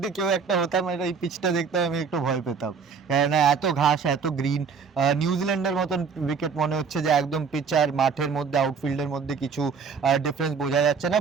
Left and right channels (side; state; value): left; quieter; 5.8 dB